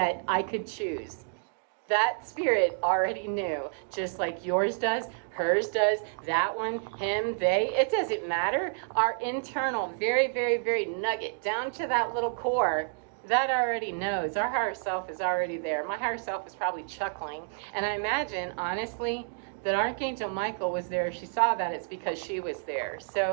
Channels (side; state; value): left; silent; digital silence